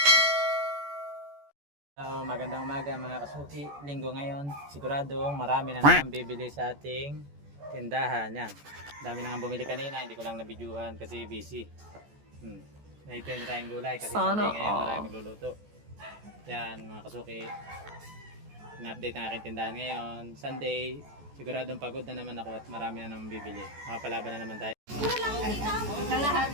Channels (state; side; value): late; left; 14 ms